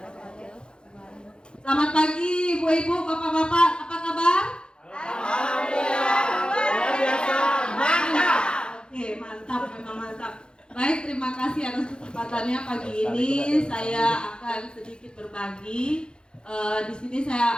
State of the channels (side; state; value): right; late; 0.050 ms